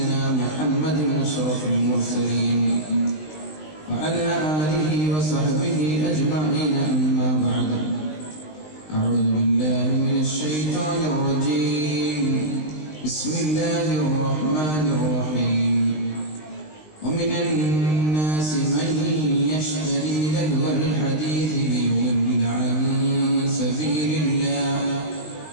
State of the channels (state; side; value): late; right; 20 ms